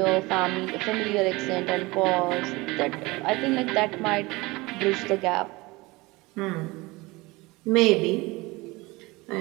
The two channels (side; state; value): left; quieter; 22.7 dB